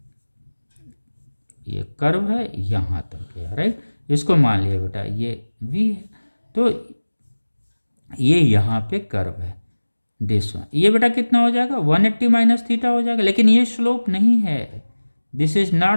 ये कर्व है यहाँ तक गया, राइट। इसको मान लिया बेटा ये V है, तो ये यहाँ पे कर्व है दिस वन। ये बेटा कितना हो जाएगा, 180 माइनस थीटा हो जाएगा। लेकिन ये स्लोप नहीं है, this is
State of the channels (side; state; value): both; inverted; correlation -1.00